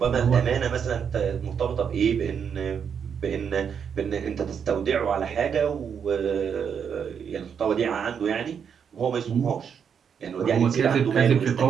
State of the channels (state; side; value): quieter; left; 7.3 dB